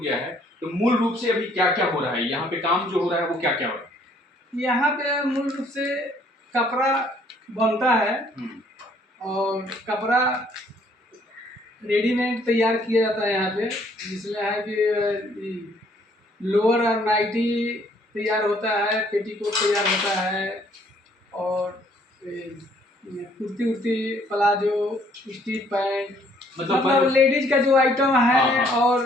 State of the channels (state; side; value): normal; both; correlation 0.63